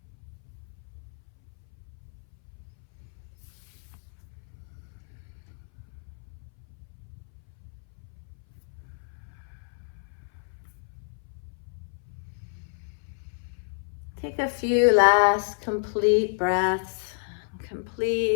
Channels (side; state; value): right; silent; 57 dB below the other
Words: Take a few last complete breaths,